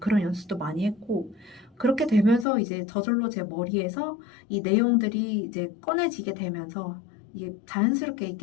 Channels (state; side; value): drops out; right; at 2.5 s